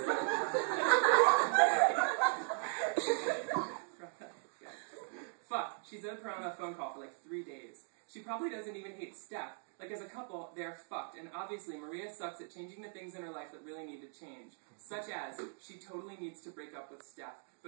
Fuck, she's owed Piranha a phone call for like 3 days. She probably doesn't even hate Steph. Like, as a couple, they're fucked, and obviously Maria sucks at changing the things in her life that really need to change. Such as, she totally needs to break up with Steph.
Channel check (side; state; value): left; silent; 52 dB below the other